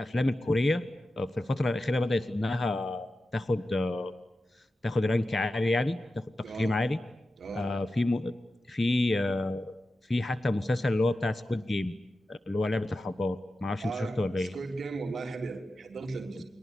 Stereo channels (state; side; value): normal; both; correlation 0.93